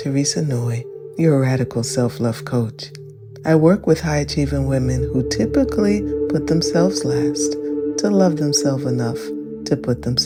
Noy, your radical self-love coach. I work with high-achieving women who typically put themselves last to love themselves enough to put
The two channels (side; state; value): both; identical; correlation 1.00